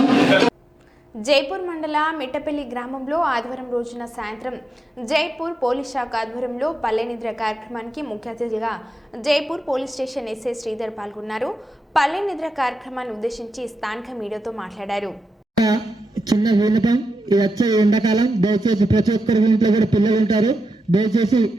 జైపూర్ మండల మిట్టపల్లి గ్రామంలో ఆదివారం రోజున సాయంత్రం జైపూర్ పోలీస్ శాఖ ఆధ్వర్యంలో పల్లె నిద్ర కార్యక్రమానికి ముఖ్య అతిథిగా Jaipur police station SI Sridhar పాల్గొన్నారు. పల్లె నిద్ర కార్యక్రమాన్ని ఉద్దేశించి స్థానిక మీడియాతో మాట్లాడారు. చిన్న విన్నపం, ఇది వచ్చే ఎండాకాలం, దయచేసి ప్రతి ఒక్కరి ఇంట్లో కూడా పిల్లలు ఉంటారు. దయచేసి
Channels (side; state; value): both; normal; correlation 0.89